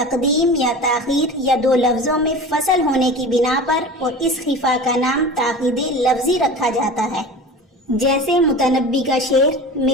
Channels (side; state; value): both; normal; correlation 0.34